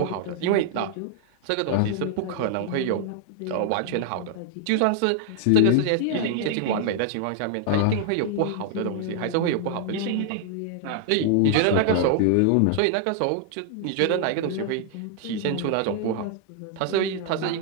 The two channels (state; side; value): different; both; correlation 0.00